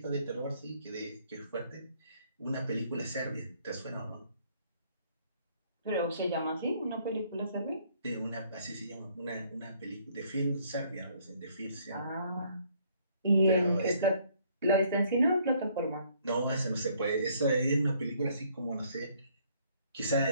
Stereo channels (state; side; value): inverted; both; correlation -0.64